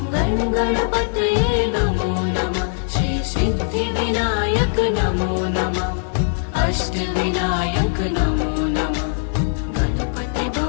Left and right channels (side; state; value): right; silent; digital silence